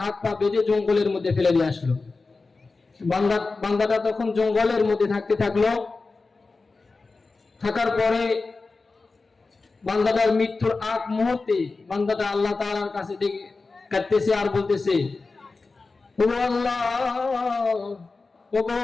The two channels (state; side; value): quieter; right; 3.9 dB